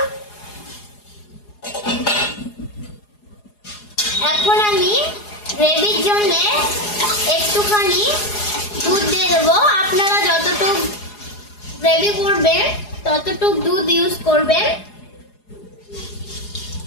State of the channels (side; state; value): right; late; 4.8 ms